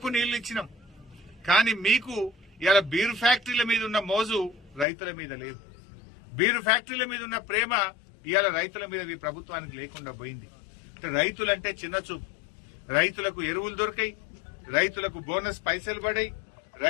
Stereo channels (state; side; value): drops out; right; at 4.9 s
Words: నీళ్లు ఇచ్చినాం. కానీ మీకు ఇలా బీర్ ఫ్యాక్టరీల మీద ఉన్న మోజు రైతుల మీద లేదు. బీరు ఫ్యాక్టరీల మీద ఉన్న ప్రేమ ఇవాళ రైతుల మీద ఈ ప్రభుత్వానికి లేకుండా పోయింది. రైతులంటే చిన్న చూపు. రైతులకు ఎరువులు దొరికాయి, రైతులకు బోనస్ పైసలు పడాయి,